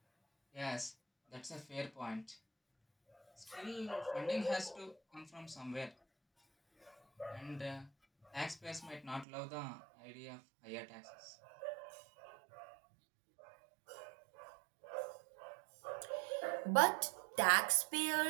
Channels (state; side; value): drops out; left; at 9.2 s